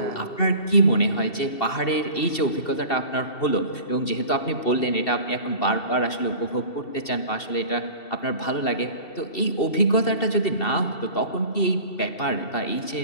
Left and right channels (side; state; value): right; late; 2.7 ms